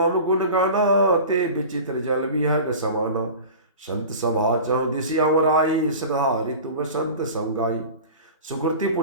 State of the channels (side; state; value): both; inverted; correlation -0.36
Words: गुण गाना, ते विचित्र जल विहग समाना। संत सभा चौदिसिया आई, श्रद्धा ऋतु बसंत संगाई। सुकृति